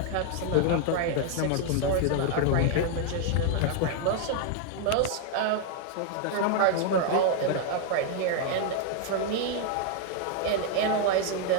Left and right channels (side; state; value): both; different; correlation 0.00